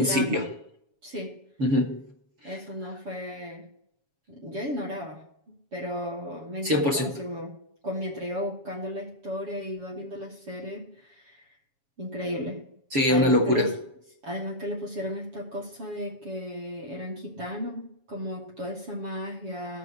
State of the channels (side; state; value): left; late; 7.2 ms